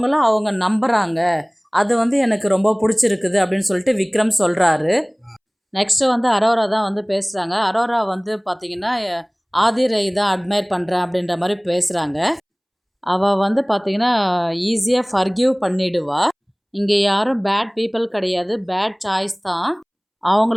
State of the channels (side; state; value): both; identical; correlation 1.00